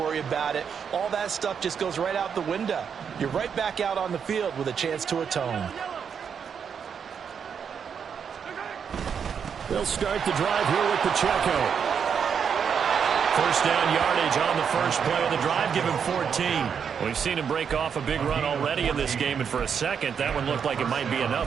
about it. All that stuff just goes right out the window. You're right back out on the field with a chance to atone. They'll start the drive here with Pacheco. First down yardage on the first play of the drive, give him 14. We've seen him break off a big run already in this game, and for a second, that one looked like it might be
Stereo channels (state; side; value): quieter; left; 7.1 dB